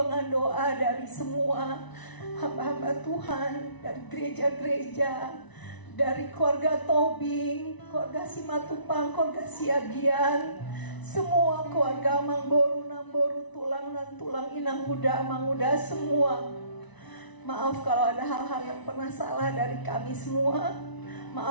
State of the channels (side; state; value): right; late; 1.0 ms